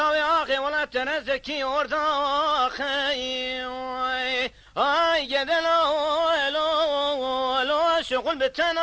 ياخي ولا تنزكي ورداخ اي قد لو شغل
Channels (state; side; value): identical; both; correlation 1.00